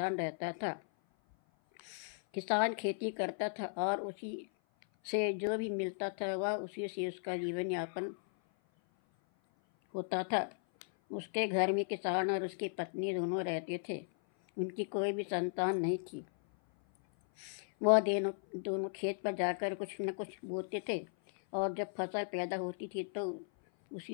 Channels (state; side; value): silent; right; 54 dB below the other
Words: रहता था। किसान खेती करता था और उसी से जो भी मिलता था वह उसी से उसका जीवन यापन होता था। उसके घर में किसान और उसकी पत्नी दोनों रहते थे। उनकी कोई भी संतान नहीं थी। वह दोनों खेत पर जाकर कुछ न कुछ बोते थे और जब फसल पैदा होती थी तो